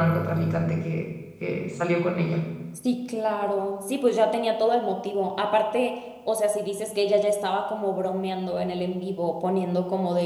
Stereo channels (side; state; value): both; identical; correlation 1.00